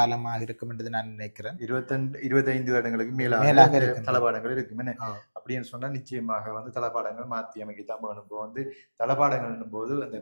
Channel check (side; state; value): both; inverted; correlation -1.00